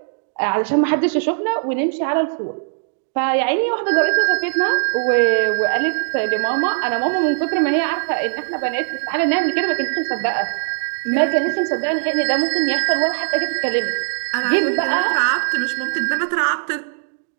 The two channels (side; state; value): left; silent; digital silence